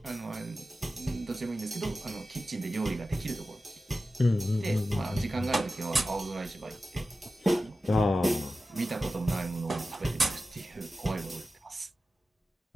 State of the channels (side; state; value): both; normal; correlation 0.93